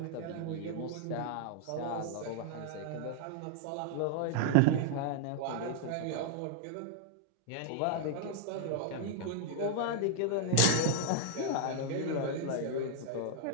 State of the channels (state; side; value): different; both; correlation 0.00